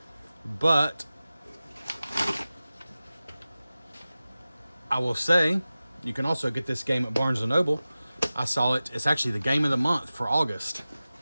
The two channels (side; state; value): both; inverted; correlation -0.96